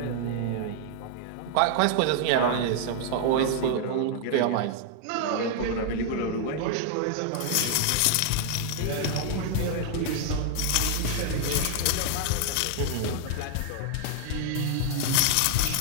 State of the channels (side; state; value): both; different; correlation 0.00